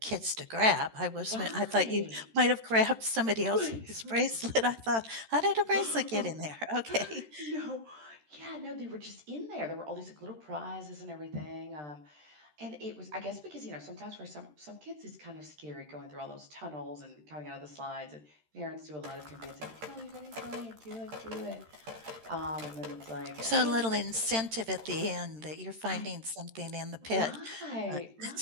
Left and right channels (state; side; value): late; left; 13 ms